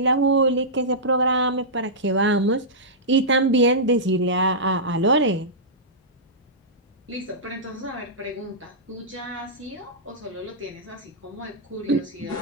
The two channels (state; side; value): normal; both; correlation -0.15